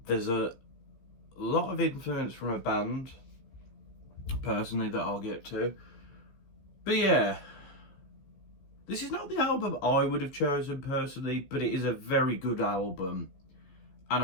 There's a lot of influence from a band, personally, that I'll get to. But yeah, this is not the album I would have chosen personally, but it is a very good album. And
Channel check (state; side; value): late; right; 15 ms